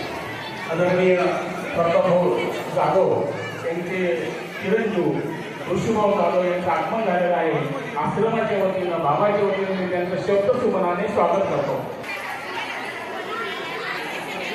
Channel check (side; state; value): both; identical; correlation 1.00